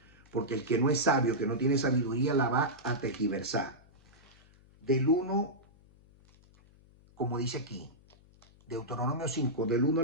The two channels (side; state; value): left; noise; hum, 27 dB below the sound